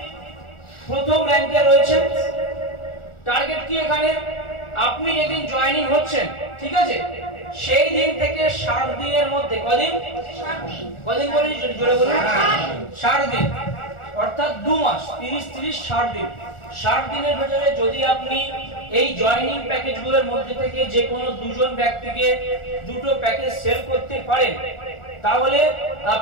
প্রথম র‍্যাঙ্কে রয়েছেন। টার্গেট কি এখানে? আপনি যেদিন জয়েনিং হচ্ছেন, ঠিক আছে, সেই দিন থেকে 60 দিনের মধ্যে, কদিন? 60 দিন। কদিন বলে জোরে বলুন? 60 দিন, অর্থাৎ 2 মাস, 30 30 60 দিন। 60 দিনের ভিতরে যদি আপনি এই জয়েনিং প্যাকেজগুলোর মধ্যে থেকে যে কোনো দুজন ব্যক্তিকে দুটো প্যাকেজ সেল করতে পারেন, তাহলে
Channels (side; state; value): right; late; 1.4 ms